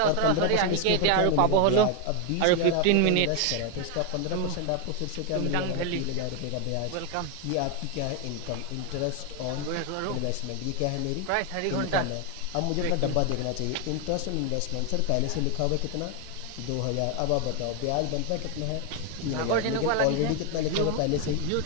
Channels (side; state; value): both; different; correlation 0.01